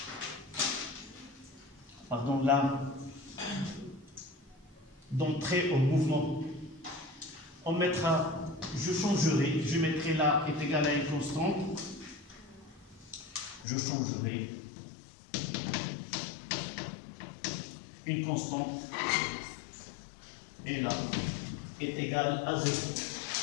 Pardon, là, d'entrer au mouvement. On mettra, je changerai, je mettrai là est égal à une constante. Je changerai une constante et là est égal à 0.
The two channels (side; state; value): right; drops out; at 13.7 s